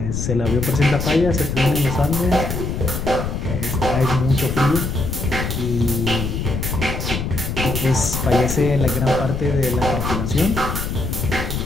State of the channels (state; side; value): noise; left; rumble, 3 dB below the sound